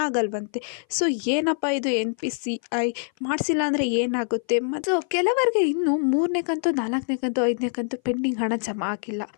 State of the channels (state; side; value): silent; right; 58 dB below the other